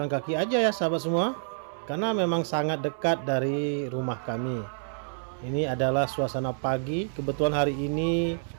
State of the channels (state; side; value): silent; left; 59 dB below the other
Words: kaki aja ya sahabat semua, karena memang sangat dekat dari rumah kami. Ini adalah suasana pagi. Kebetulan hari ini